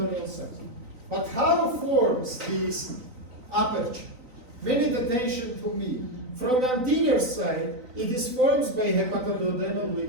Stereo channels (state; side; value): late; left; 3.9 ms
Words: sac. But how forms this aperture? Pay attention to me. From anterior side, it is formed by hepatoduodenal